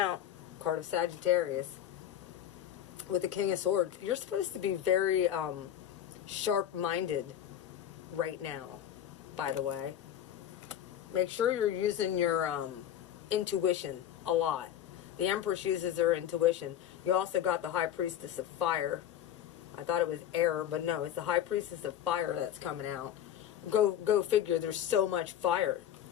Card of Sagittarius. With the King of Swords. You're supposed to be very sharp-minded right now, by the way. Make sure you're using your intuition a lot. The Empress uses her intuition. You also got the High Priestess of Fire. I thought it was air, but no, it's the High Priestess of Fire that's coming out. Go figure, there's so much fire.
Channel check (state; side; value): quieter; right; 10.4 dB